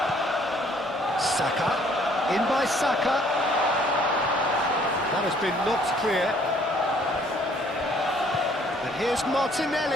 Saka, in by Saka. That has been knocked clear. And here's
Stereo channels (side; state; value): both; normal; correlation 0.61